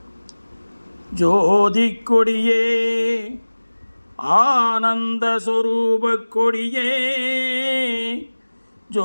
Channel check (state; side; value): inverted; both; correlation -1.00